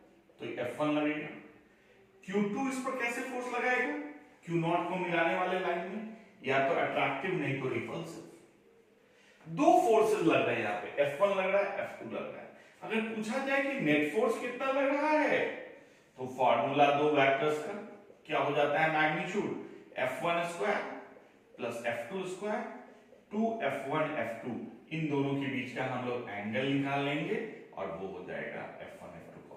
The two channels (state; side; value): identical; both; correlation 1.00